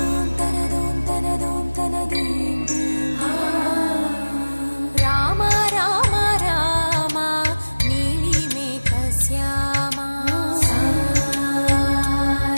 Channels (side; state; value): both; inverted; correlation -1.00